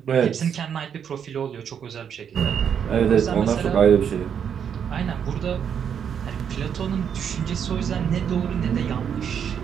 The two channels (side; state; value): left; quieter; 8.0 dB